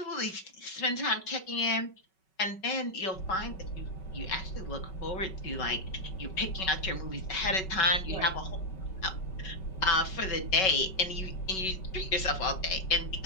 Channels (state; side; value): late; right; 5.3 ms